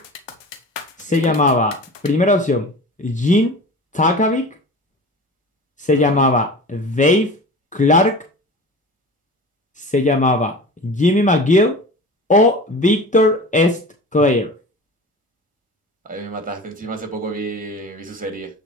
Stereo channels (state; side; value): normal; both; correlation 0.36